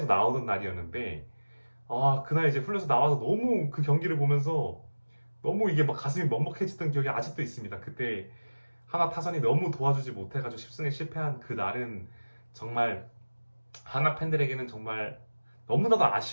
나오던 날이었는데 그날 이제 훈련소 나와서 너무 그 경기를 보면서 너무 이게 막 가슴이 먹먹해지던 기억이 아직도 있습니다. 그때 하나 타선이 너무 도와주지 못해가지고 10승에 실패한 그 날은 정말 하나 팬들에게는 정말 너무나도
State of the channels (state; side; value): inverted; both; correlation -1.00